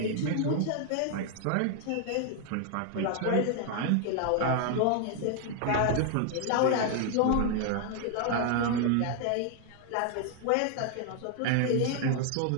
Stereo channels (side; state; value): both; different; correlation 0.00